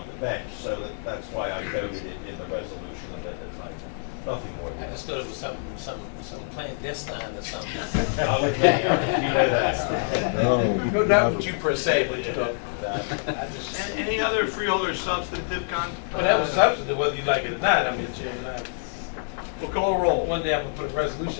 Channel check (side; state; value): right; silent; 61 dB below the other